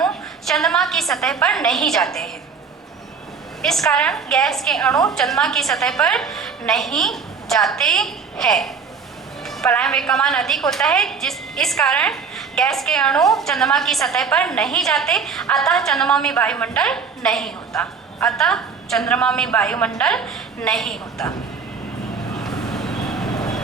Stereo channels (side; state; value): left; quieter; 5.6 dB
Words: चंद्रमा की सतह पर नहीं जाते हैं, इस कारण गैस के अणु चंद्रमा की सतह पर नहीं जाते हैं। पलायन वेग का मान अधिक होता है, इस कारण गैस के अणु चंद्रमा की सतह पर नहीं जाते, अतः चंद्रमा में वायुमंडल नहीं होता, अतः चंद्रमा में वायुमंडल नहीं होता।